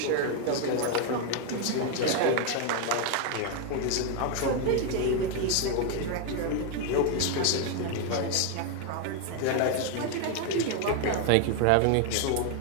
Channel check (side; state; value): both; different; correlation 0.01